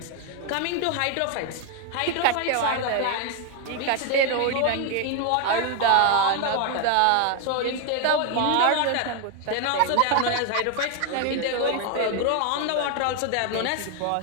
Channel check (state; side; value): different; both; correlation 0.01